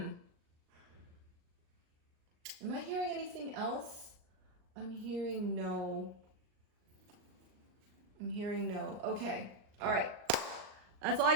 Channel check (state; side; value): late; left; 38 ms